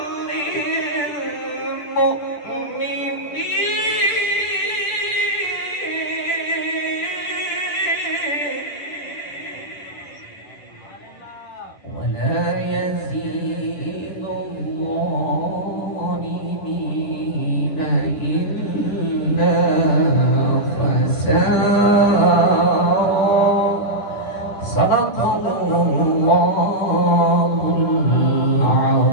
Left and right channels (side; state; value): right; late; 10 ms